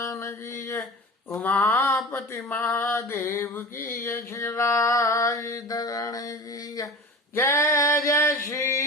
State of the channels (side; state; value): both; normal; correlation 0.34